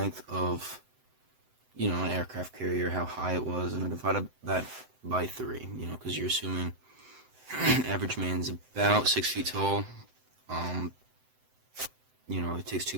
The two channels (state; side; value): late; left; 7.8 ms